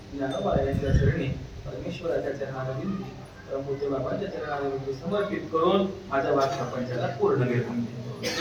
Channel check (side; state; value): both; identical; correlation 1.00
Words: ज्ञानोबारायांच्या चरणी परमेश्वराच्या चरणावरील परमपूज्य बाबांच्या चरणावरील समर्पित करून माझ्या वाक्य प्रपंचाला पूर्ण घेऊन